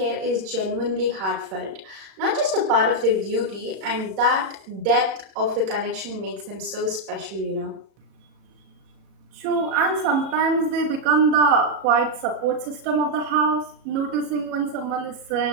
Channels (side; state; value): left; late; 37 ms